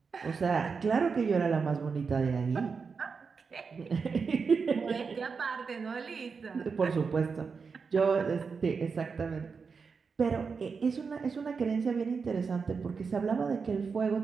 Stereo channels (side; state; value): left; quieter; 5.3 dB